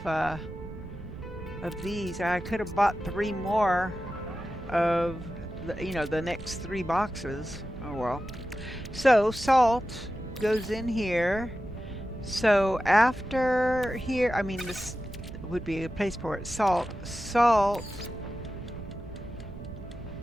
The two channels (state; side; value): noise; right; rumble, 14 dB below the sound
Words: of these. I could have bought 3 more of the next 3 boxes. Oh well. So salt goes in here. So after here, I mean this would be a place for it. Salt,